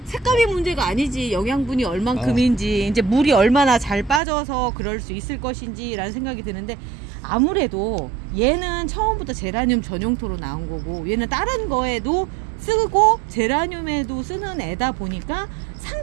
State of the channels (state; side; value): drops out; left; at 4.2 s